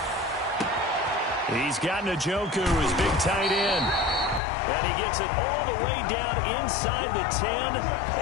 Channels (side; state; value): right; drops out; at 4.4 s